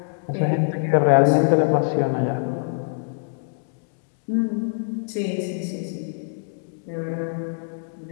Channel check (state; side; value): silent; right; digital silence